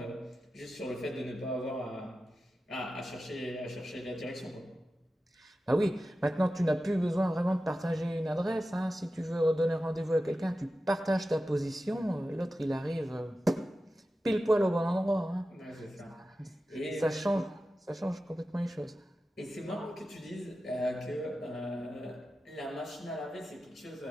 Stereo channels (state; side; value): normal; both; correlation 0.93